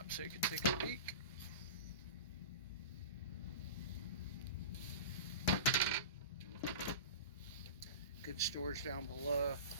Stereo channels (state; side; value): inverted; both; correlation -0.31